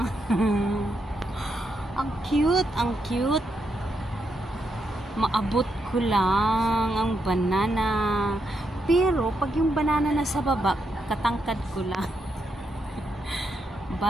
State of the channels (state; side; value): normal; both; correlation 0.81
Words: Ang cute. Maabot ko lang ang banana. Pero, pag yung banana na sa baba, katangkad ko lang.